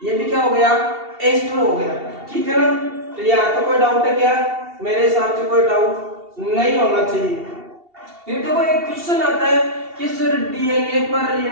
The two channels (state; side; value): late; left; 2.7 ms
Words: ये भी क्या हो गया, एस्टर हो गया, ठीक है ना। तो यहाँ तो कोई डाउट है क्या, मेरे हिसाब से कोई डाउट नहीं होना चाहिए। फिर देखो एक क्वेश्चन आता है कि सर डीएनए पर